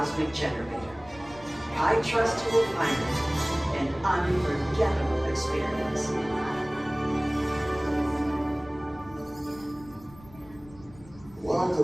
generator. I trust you will find it an unforgettable experience.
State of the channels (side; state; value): left; noise; rumble, 22 dB below the sound